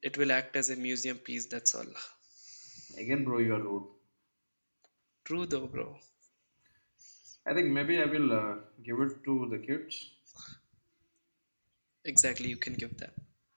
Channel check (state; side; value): inverted; both; correlation -1.00